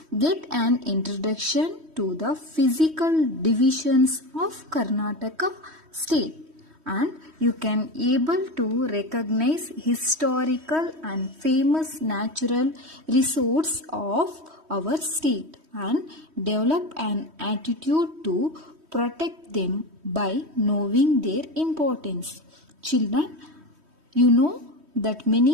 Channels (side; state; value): left; late; 3.1 ms